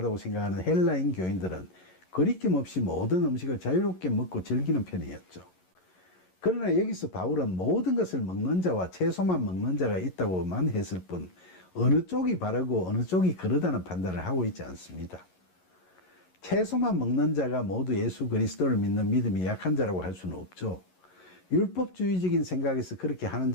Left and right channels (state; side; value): late; right; 11 ms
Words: 생각하는 헬라인 교인들은 거리낌 없이 모든 음식을 자유롭게 먹고 즐기는 편이었죠. 그러나 여기서 바울은 모든 것을 먹는 자와 채소만 먹는 자가 있다고만 했을 뿐 어느 쪽이 바르고 어느 쪽이 그르다는 판단을 하고 있지 않습니다. 채소만 먹는 자가 모두 예수 그리스도를 믿는 믿음이 약한 자라고 할 수는 없죠. 율법주의적인 생각에서 그렇게 하는